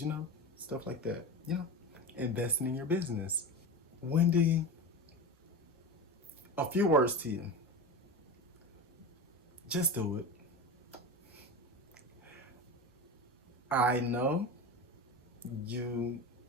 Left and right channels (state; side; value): normal; both; correlation 0.26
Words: stuff like that. Investing in your business. Wendy, a few words to you. Just do it. I know you're